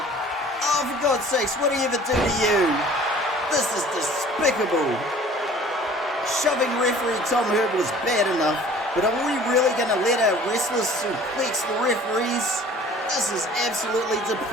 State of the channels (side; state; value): both; normal; correlation 0.49